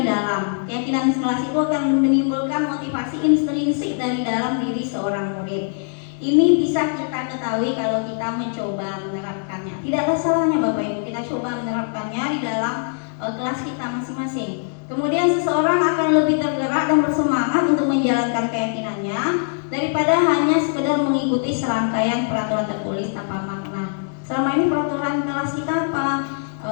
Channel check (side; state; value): right; silent; digital silence